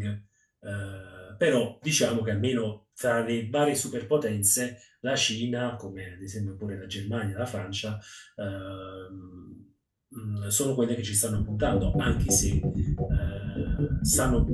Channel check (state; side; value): identical; both; correlation 1.00